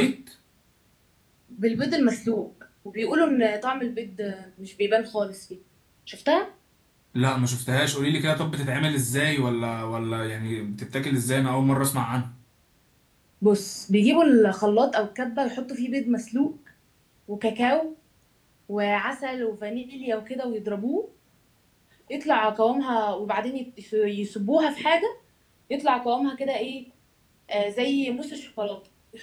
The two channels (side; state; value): both; identical; correlation 1.00